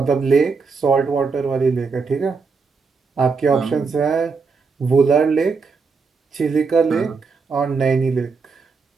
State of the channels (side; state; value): left; quieter; 4.8 dB